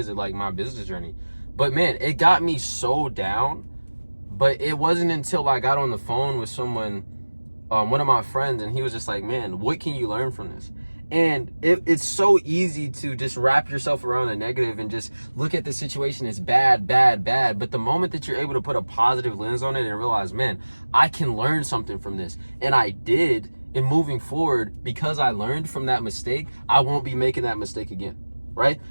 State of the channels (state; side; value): inverted; both; correlation -1.00